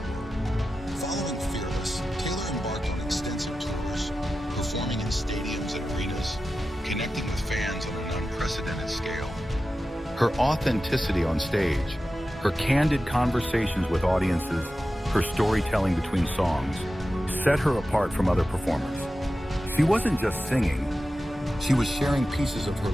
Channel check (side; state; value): both; normal; correlation 0.93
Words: the world. Following Fearless, Taylor embarked on extensive tours, performing in stadiums and arenas, connecting with fans on an unprecedented scale. Her authenticity on stage, her candid conversations with audiences, her storytelling between songs, set her apart from other performers. She wasn't just singing, she was sharing pieces of her